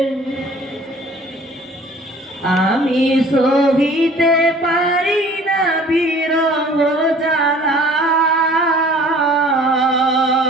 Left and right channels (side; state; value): both; normal; correlation 0.50